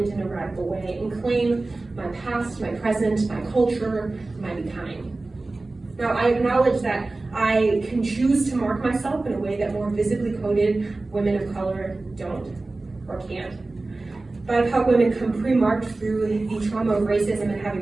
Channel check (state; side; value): quieter; left; 3.2 dB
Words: in a radical way and claim my past, my present, my culture, my becoming. Now, I acknowledge that I can choose to mark myself in a way that more visibly coded women of color don't or can't. BIPOC women come pre-marked through the trauma of racism and have